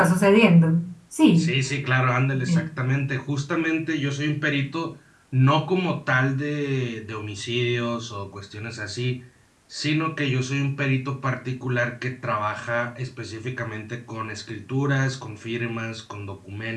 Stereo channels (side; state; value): both; identical; correlation 1.00